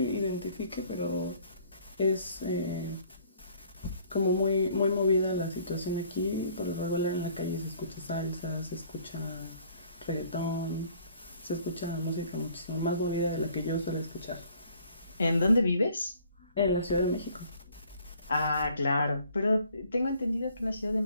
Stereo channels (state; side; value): inverted; both; correlation -0.58